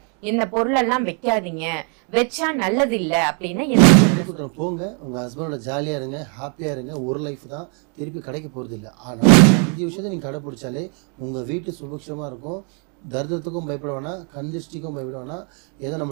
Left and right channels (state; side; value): quieter; left; 39.2 dB